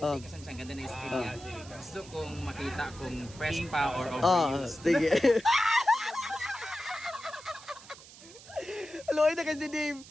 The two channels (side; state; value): right; noise; hiss, 19 dB below the sound